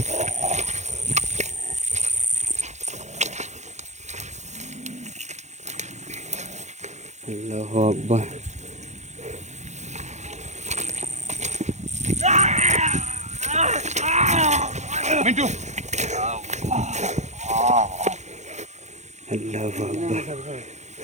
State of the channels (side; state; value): left; late; 0.33 ms